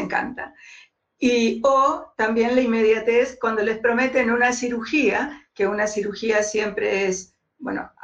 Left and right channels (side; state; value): both; identical; correlation 1.00